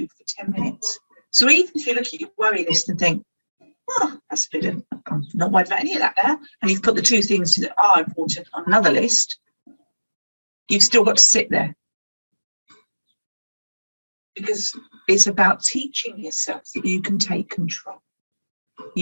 10 minutes. So even if you look at your worry list and think, oh, that's a bit of, I'm not worried about any of that now, and you've put the two things that are important on another list, you've still got to sit there. Because it's about teaching yourself that you can take control.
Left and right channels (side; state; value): both; inverted; correlation -1.00